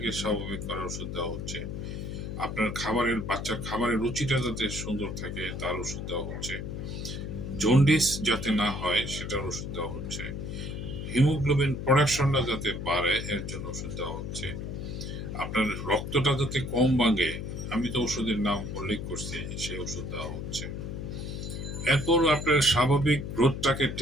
স্বাভাবিক করার ওষুধ দেওয়া হচ্ছে, আপনার খাবারের, বাচ্চার খাবারের রুচিটা যাতে সুন্দর থাকে তার ওষুধ দেওয়া হচ্ছে, জন্ডিস যাতে না হয় সেটার ওষুধ দেওয়া হচ্ছে, হিমোগ্লোবিন প্রোডাকশনটা যাতে বাড়ে এর জন্য ওষুধ দেওয়া হচ্ছে, আপনার রক্তটা যাতে কম ভাঙে, আমি তো ওষুধের নাম উল্লেখ করছি, সেই ওষুধ দেওয়া হচ্ছে। এরপর আপনার স্বাভাবিক গ্রোথটাকে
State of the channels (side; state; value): left; noise; hum, 6 dB below the sound